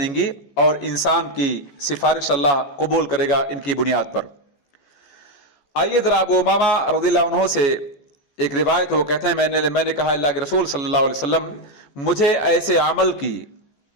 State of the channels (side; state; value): right; late; 14 ms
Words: और इंसान की सिफारिश अल्लाह कबूल करेगा इनकी बुनियाद पर। आइए ज़रा अबू उमामा रज़ियल्लाहु अन्हु से एक रिवायत, वो कहते हैं, मैंने कहा, अल्लाह के रसूल सल्लल्लाहु अलैहि वसल्लम, मुझे ऐसे अमल की